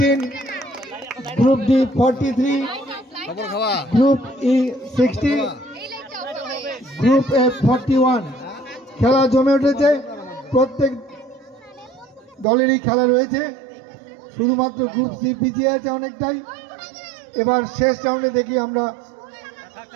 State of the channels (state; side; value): drops out; left; at 12.5 s